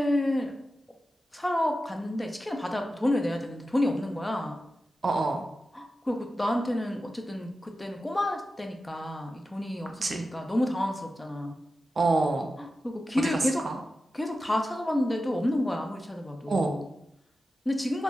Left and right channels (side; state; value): both; normal; correlation 0.92